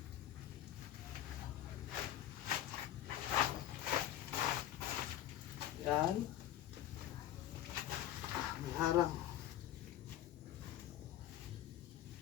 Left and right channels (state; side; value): quieter; right; 12.3 dB